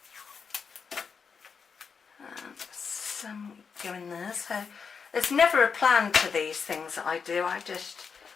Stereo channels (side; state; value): right; quieter; 5.9 dB